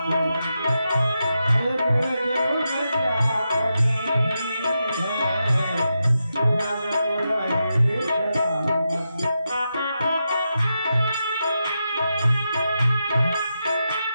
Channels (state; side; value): inverted; both; correlation -0.87